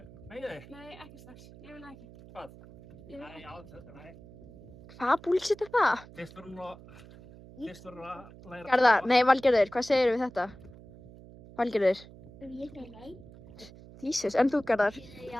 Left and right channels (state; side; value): noise; right; hum, 19 dB below the sound